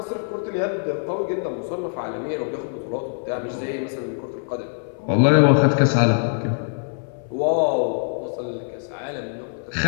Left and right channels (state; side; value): silent; right; 60 dB below the other